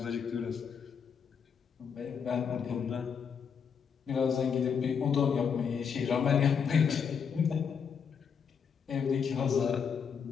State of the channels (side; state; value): right; quieter; 6.8 dB